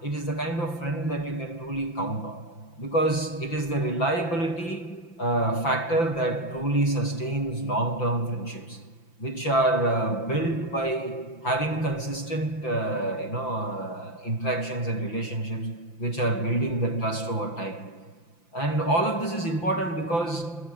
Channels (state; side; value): late; right; 5.9 ms